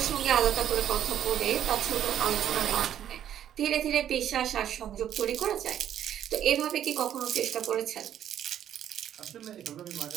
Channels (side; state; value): left; quieter; 10.5 dB